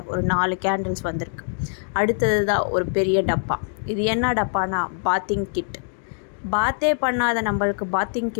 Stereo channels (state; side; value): silent; right; digital silence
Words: ஒரு 4 கேண்டில்ஸ் வந்திருக்கு. அடுத்தது தான் ஒரு பெரிய டப்பா. இது என்ன டப்பானா பாத்திங் கிட். பாத்தே பண்ணாத நம்மளுக்கு பாத்திங்